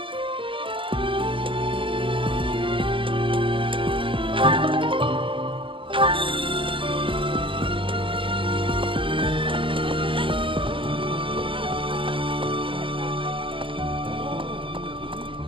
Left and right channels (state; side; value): late; left; 0.25 ms